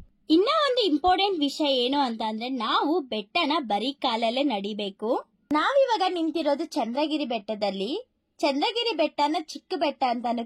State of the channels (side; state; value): both; identical; correlation 1.00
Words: ಇನ್ನ ಒಂದು ಇಂಪಾರ್ಟೆಂಟ್ ವಿಷಯ ಏನು ಅಂತ ಅಂದ್ರೆ ನಾವು ಬೆಟ್ಟನ ಬರೀ ಕಾಲಲ್ಲೇ ನಡಿಬೇಕು. ನಾವಿವಾಗ ನಿಂತಿರೋದು ಚಂದ್ರಗಿರಿ ಬೆಟ್ಟದಲ್ಲಿ. ಚಂದ್ರಗಿರಿ ಬೆಟ್ಟನ ಚಿಕ್ಕ ಬೆಟ್ಟ ಅಂತಾನು